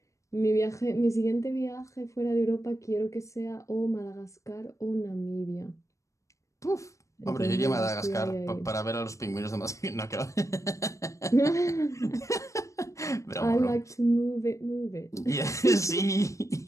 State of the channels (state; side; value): late; right; 0.15 ms